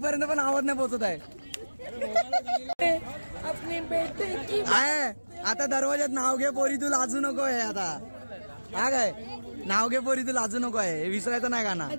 पर्यंत पण आवाज नाही पोहोचत आहे. आता दरवाजात नाव घे पोरी तू लाजू नको आहे. आता हा काय नाव घे पोरी तू लाजू नको आहे हे विसरायचं नाही गाणं.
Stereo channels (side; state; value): both; inverted; correlation -1.00